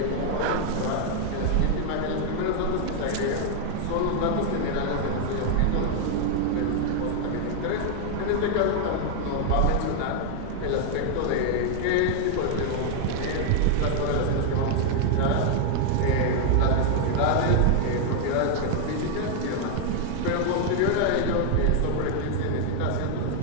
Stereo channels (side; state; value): both; different; correlation 0.00